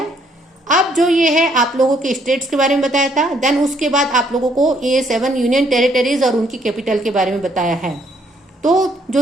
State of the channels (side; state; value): both; normal; correlation 0.68